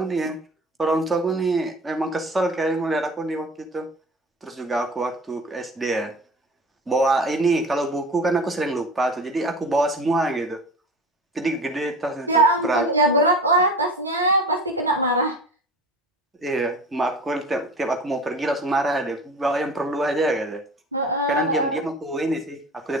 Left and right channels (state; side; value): normal; both; correlation 0.37